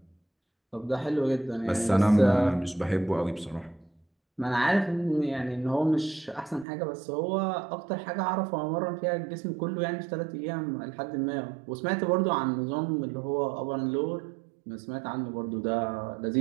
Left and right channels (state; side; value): drops out; left; at 6.7 s